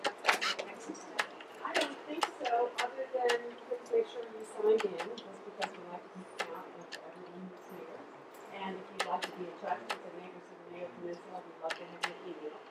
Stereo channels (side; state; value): both; identical; correlation 1.00